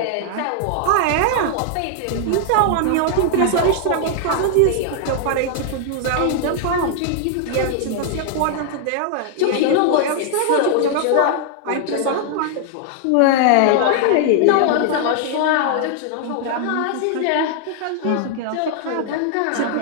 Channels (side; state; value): both; different; correlation 0.00